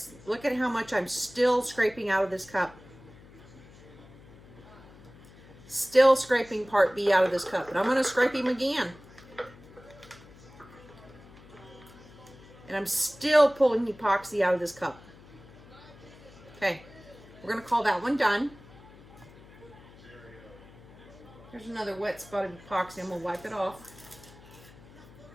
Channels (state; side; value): noise; left; hum, 21 dB below the sound